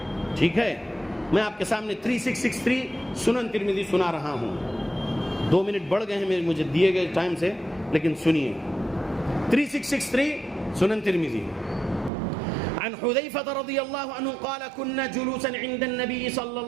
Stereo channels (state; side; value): drops out; left; at 12.1 s